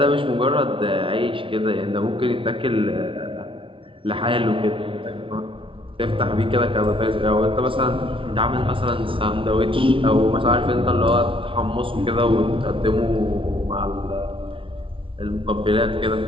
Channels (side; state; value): left; late; 0.25 ms